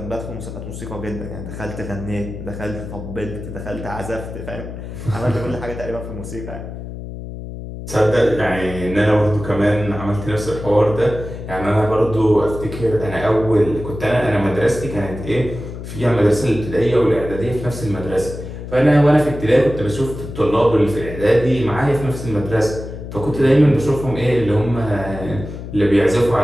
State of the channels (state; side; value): noise; left; hum, 10 dB below the sound